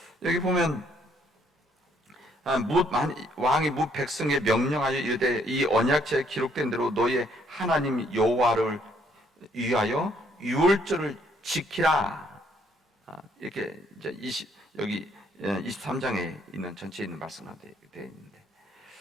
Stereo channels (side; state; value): both; normal; correlation 0.67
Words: 여기 보면 왕이 무 백성에 명령하여 이르되 이 언약책에 기록된 대로 너의 하나님 여호와를 위하여 유월절을 지키라. 이렇게 이제 여기 23장에 있는 전체에 있는 말씀이 되어 있는데,